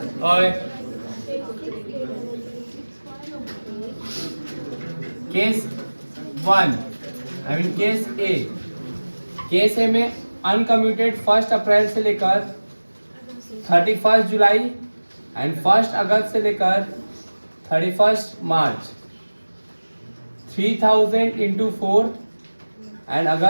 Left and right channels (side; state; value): both; inverted; correlation -1.00